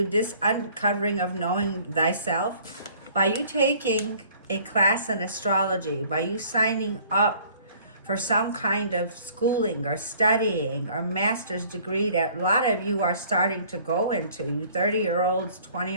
this uncovering of knowing thyself, by you taking a class in astrology, by you signing up for some kind of schooling or studying or master's degree that a lot of you are starting to go into, you 30-year-olds,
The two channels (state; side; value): inverted; both; correlation -0.55